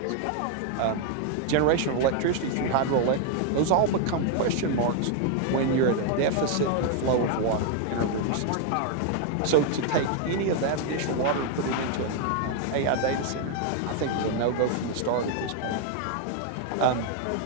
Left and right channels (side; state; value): both; different; correlation 0.00